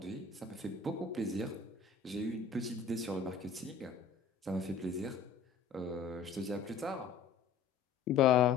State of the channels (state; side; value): quieter; right; 5.8 dB